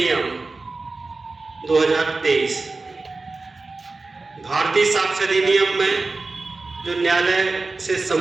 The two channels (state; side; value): quieter; left; 3.6 dB